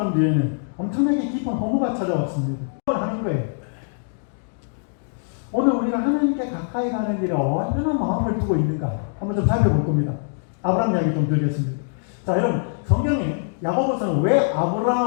뒤에는 엄청나게 깊은 허무가 찾아왔습니다. 그걸 하는 거예요. 우리가 하나님께 가까이 가는 일에 얼마나 마음을 두고 있는가 한번 좀 살펴볼 겁니다. 아브라함 이야기 좀 드리겠습니다. 자, 여러분 성경에 야고보서는 왜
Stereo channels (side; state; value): right; silent; digital silence